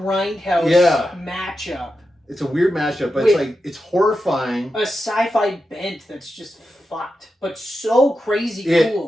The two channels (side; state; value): both; normal; correlation 0.89